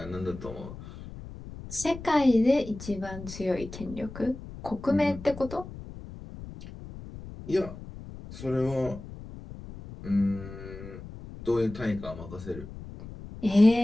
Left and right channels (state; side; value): noise; left; rumble, 13 dB below the sound